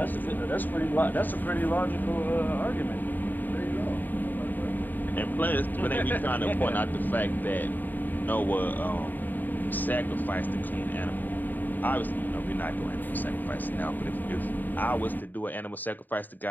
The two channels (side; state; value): right; late; 0.088 ms